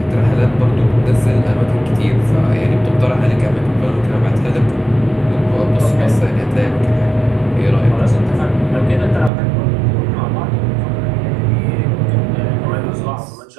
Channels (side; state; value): left; drops out; at 9.3 s